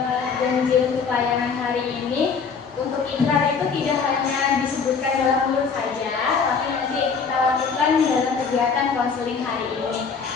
janji untuk layanan hari ini. Untuk ikrar itu tidak hanya disebutkan dalam mulut saja, tapi nanti kita lakukan dalam kegiatan konseling hari ini.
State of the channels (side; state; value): right; quieter; 5.6 dB